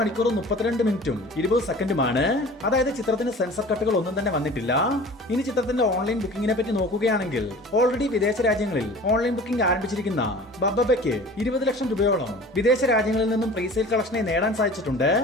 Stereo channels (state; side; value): normal; both; correlation 0.43